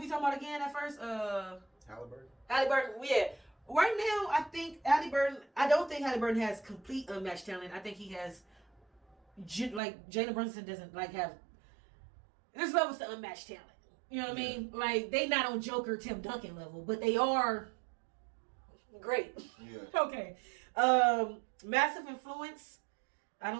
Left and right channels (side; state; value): left; drops out; at 9.8 s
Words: talking about again at first? Halliburton. Halliburton, yeah. Right now, I think Halliburton, I don't think Halliburton has complete unmatched talent. I think he has, like, Jalen Brunson doesn't, like, have, there's levels to unmatched talent. You know what I mean? Like, they not on Joker Tim Duncan level, but they are great. Yeah. Okay. Massive influence. I